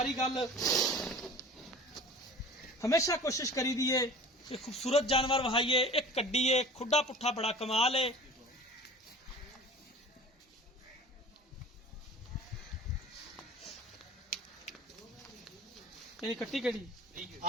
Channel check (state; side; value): normal; both; correlation 0.41